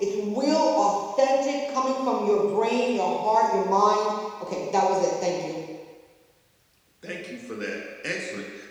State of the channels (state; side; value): identical; both; correlation 1.00